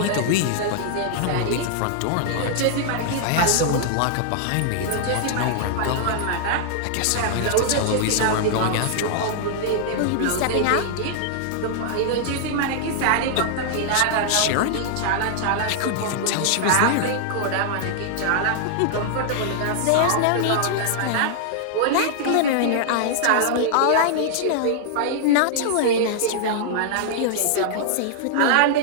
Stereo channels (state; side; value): different; both; correlation -0.01